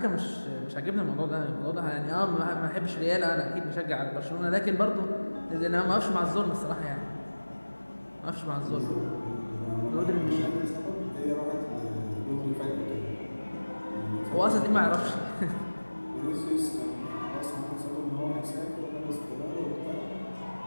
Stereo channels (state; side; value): inverted; both; correlation -1.00